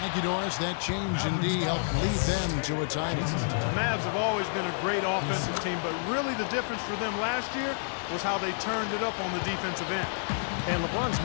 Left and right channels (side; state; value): right; silent; digital silence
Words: Thank you, Doris. That change indeed helped lead them to a title. The Mavs have always been a great offensive team, but really the difference for them last year was how they turned it up on the defensive end. And LeBron's